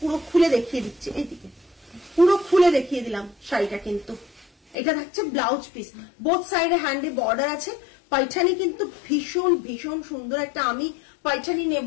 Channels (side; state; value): right; drops out; at 4.8 s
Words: খুলে দেখিয়ে দিচ্ছি, এইদিকে পুরো খুলে দেখিয়ে দিলাম শাড়িটা। কিন্তু এটা থাকছে ব্লাউজ পিস, বোথ সাইডে হ্যান্ডে বর্ডার আছে। পাইঠানি কিন্তু ভীষণ ভীষণ সুন্দর একটা, আমি পাইঠানি